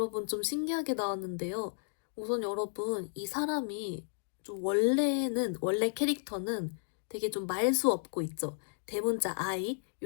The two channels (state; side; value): silent; right; digital silence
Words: 좀 신기하게 나왔는데요. 우선 여러분 이 사람이 좀 원래 캐릭터는 되게 좀 말수 없고 있죠. 대문자 I